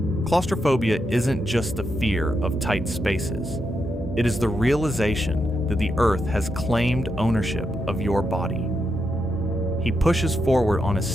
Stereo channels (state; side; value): normal; both; correlation 0.83